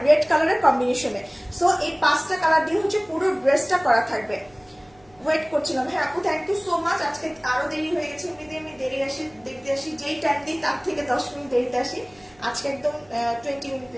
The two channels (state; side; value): noise; right; hum, 29 dB below the sound